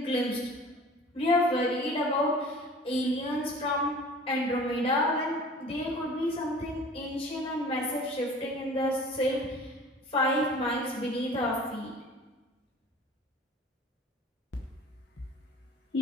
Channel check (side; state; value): both; normal; correlation 0.45